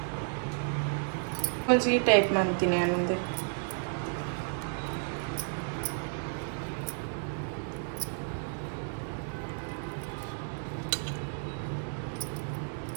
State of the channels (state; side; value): silent; left; 56 dB below the other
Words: కొంచెం ఈ టైప్ మంతిని అనుంది